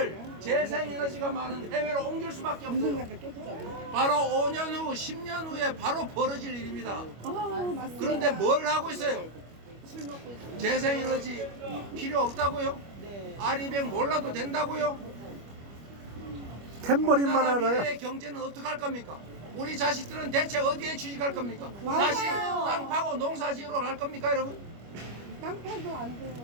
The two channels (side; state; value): left; late; 25 ms